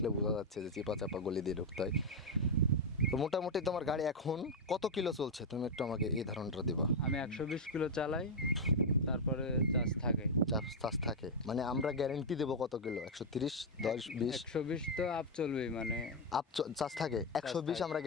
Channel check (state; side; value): normal; both; correlation 0.01